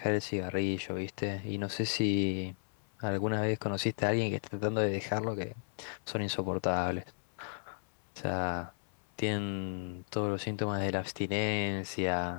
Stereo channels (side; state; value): right; silent; 55 dB below the other